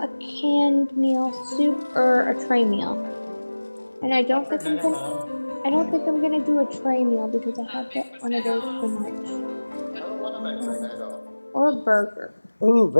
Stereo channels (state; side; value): inverted; both; correlation -1.00